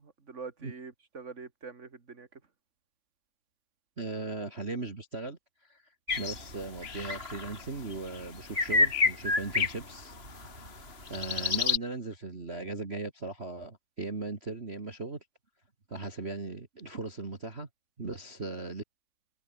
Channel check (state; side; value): late; left; 3.5 ms